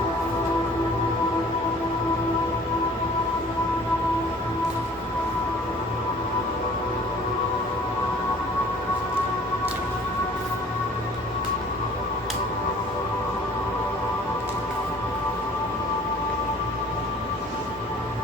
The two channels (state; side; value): normal; both; correlation 0.51